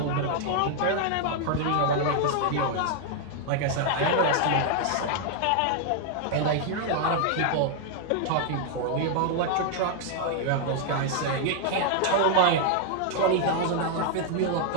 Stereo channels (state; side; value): different; both; correlation 0.00